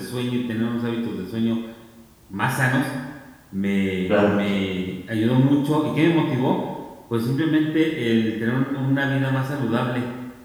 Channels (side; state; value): both; identical; correlation 1.00